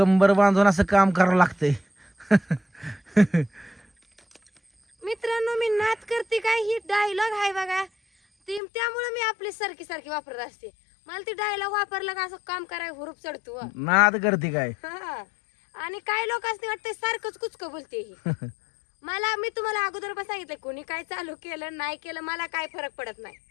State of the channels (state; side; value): drops out; right; at 8.6 s